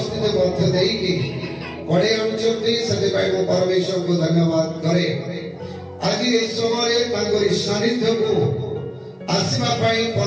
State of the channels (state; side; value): identical; both; correlation 1.00